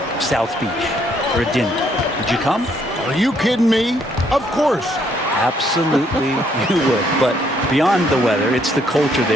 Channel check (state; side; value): normal; both; correlation 0.69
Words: South Beach for a dinner, would you come? Are you kidding me? Of course. Absolutely you would. But beyond the weather, it's the culture